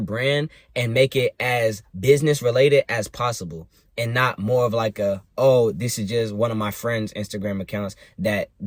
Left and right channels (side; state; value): both; identical; correlation 1.00